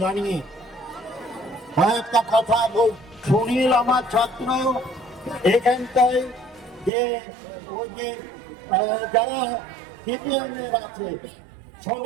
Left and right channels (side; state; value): left; drops out; at 6.9 s